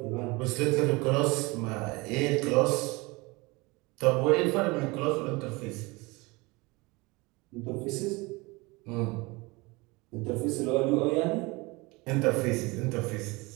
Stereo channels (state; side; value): quieter; left; 24.6 dB